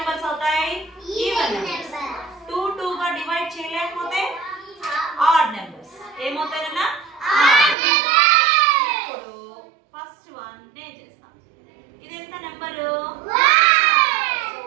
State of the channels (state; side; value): drops out; left; at 7.8 s